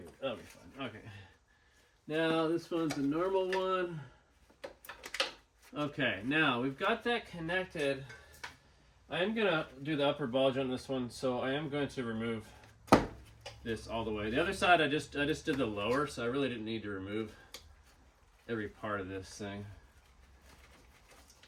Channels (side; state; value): both; identical; correlation 1.00